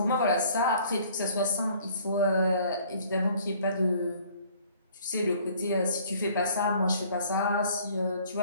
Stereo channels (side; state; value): both; inverted; correlation -0.56